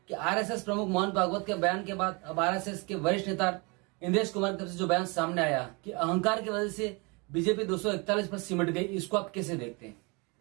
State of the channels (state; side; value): quieter; left; 29.4 dB